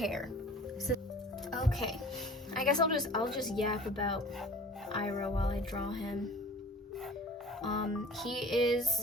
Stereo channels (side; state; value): both; normal; correlation 0.44